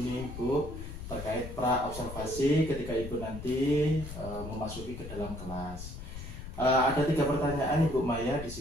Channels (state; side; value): noise; left; rumble, 10 dB below the sound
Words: Bu terkait pra observasi ketika Ibu nanti memasuki ke dalam kelas. Ada 3 pertanyaan Ibu Maya di